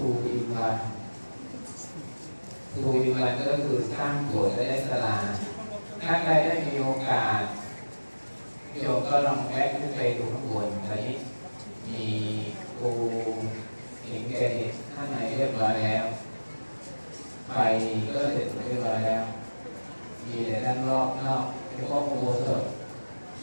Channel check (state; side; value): inverted; both; correlation -1.00